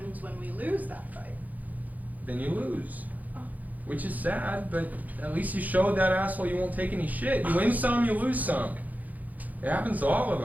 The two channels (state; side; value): late; left; 0.080 ms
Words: when we lose that fight? Then you lose. Which is sad, but at least you showed that asshole you won't take any shit. You win some, you lose some. It happens to all of